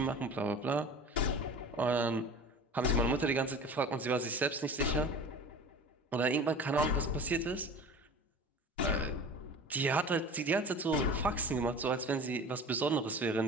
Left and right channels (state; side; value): normal; both; correlation 0.38